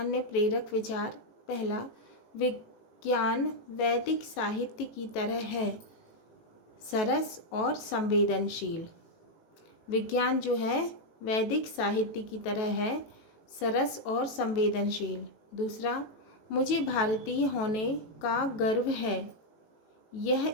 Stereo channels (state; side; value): late; right; 18 ms